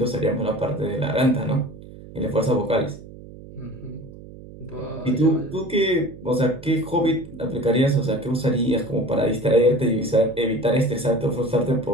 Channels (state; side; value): noise; right; hum, 17 dB below the sound